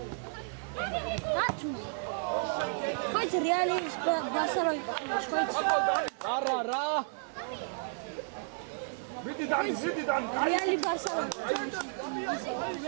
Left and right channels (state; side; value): silent; left; 56 dB below the other